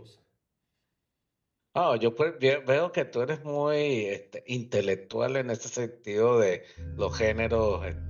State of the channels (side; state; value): both; identical; correlation 1.00